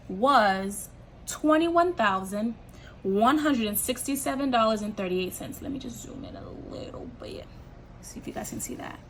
was $21,167.38. Let me just zoom in a little bit, see if you guys can see that.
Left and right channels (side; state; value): both; identical; correlation 1.00